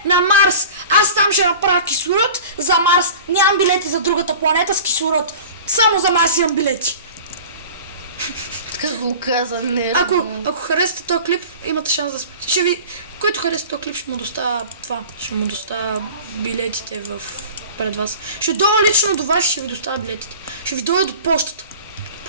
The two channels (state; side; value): inverted; both; correlation -0.39